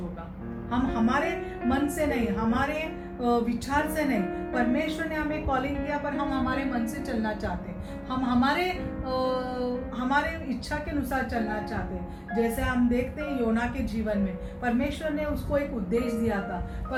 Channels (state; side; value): identical; both; correlation 1.00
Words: हम हमारे मन से नहीं, हमारे विचार से नहीं, परमेश्वर ने हमें कॉलिंग किया पर हम हमारे मन से चलना चाहते, हम हमारे इच्छा के अनुसार चलना चाहते। जैसे हम देखते हैं योना के जीवन में परमेश्वर ने उसको एक उद्देश्य दिया था,